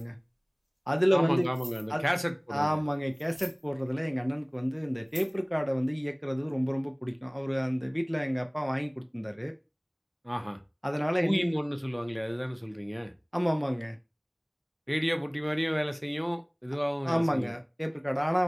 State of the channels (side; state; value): both; identical; correlation 1.00